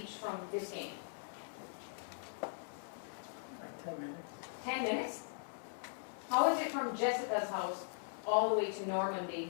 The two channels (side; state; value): right; silent; digital silence